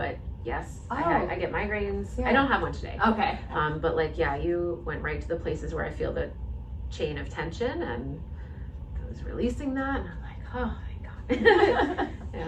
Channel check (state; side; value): identical; both; correlation 1.00